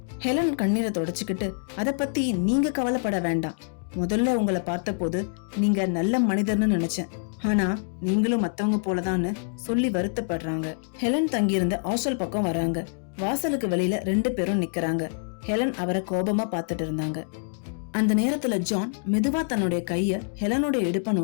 ஹெலன் கண்ணீரை தொடச்சுக்கிட்டு, அத பத்தி நீங்க கவலைப்பட வேண்டாம். முதல்ல உங்களை பார்த்த போது நீங்க நல்ல மனிதர்னு நினைச்சேன். ஆனா நீங்களும் மத்தவங்க போலதான்னு சொல்லி வருத்தப்படுறாங்க. ஹெலன் தங்கியிருந்த ஹாஸ்டல் பக்கம் வராங்க. வாசலுக்கு வெளியில 2 பேரும் நிக்கிறாங்க. ஹெலன் அவரை கோபமா பாத்துட்டு இருந்தாங்க. அந்த நேரத்துல ஜான் மெதுவா தன்னுடைய கைய ஹெலனுடைய இடுப்ப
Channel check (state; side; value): silent; right; digital silence